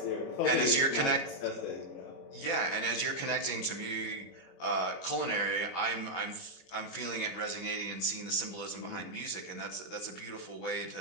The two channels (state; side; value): late; right; 22 ms